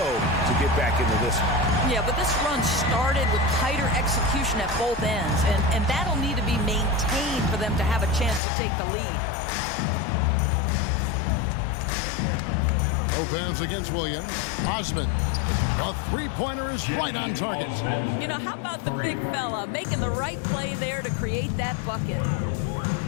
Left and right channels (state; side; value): drops out; right; at 8.4 s